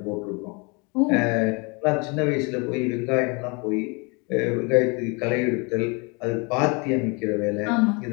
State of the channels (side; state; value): right; quieter; 30.5 dB